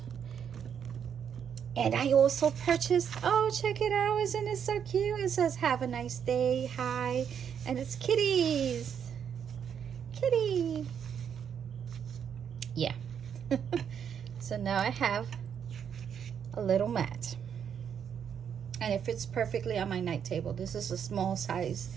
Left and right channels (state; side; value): quieter; left; 8.0 dB